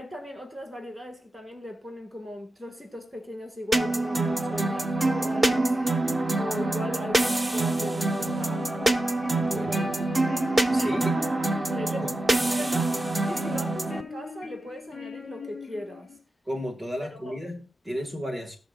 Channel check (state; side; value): normal; both; correlation 0.91